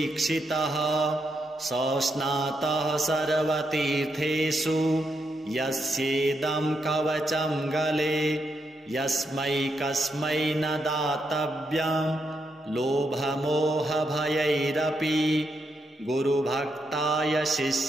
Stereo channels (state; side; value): normal; both; correlation 0.81